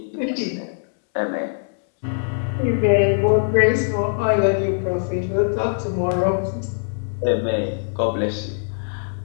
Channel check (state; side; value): silent; right; 64 dB below the other